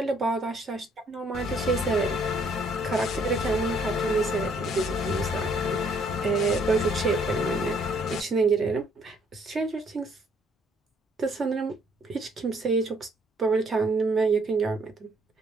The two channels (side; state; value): both; normal; correlation 0.65